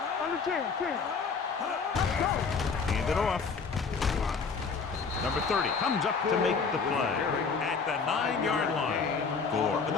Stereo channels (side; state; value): right; quieter; 5.2 dB